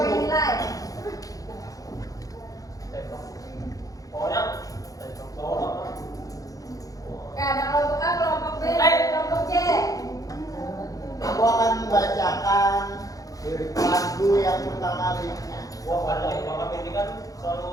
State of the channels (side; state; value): right; late; 0.17 ms